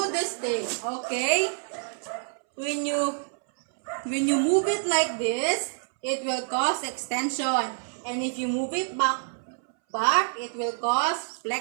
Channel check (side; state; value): left; silent; 60 dB below the other